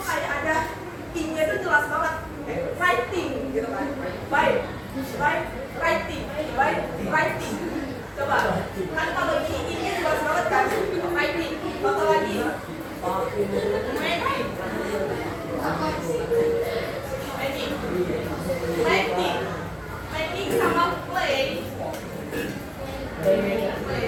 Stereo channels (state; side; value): identical; both; correlation 1.00